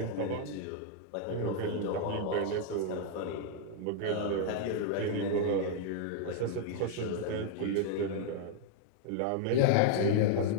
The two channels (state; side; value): different; both; correlation 0.00